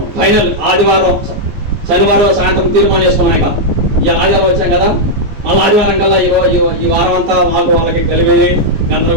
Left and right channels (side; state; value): left; late; 14 ms